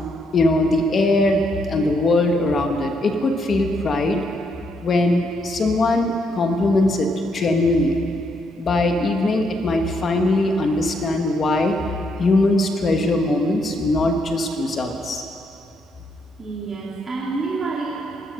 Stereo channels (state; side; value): normal; both; correlation 0.75